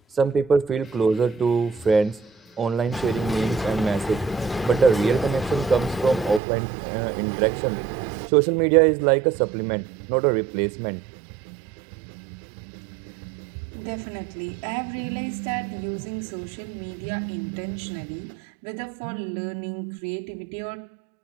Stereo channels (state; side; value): drops out; left; at 6.4 s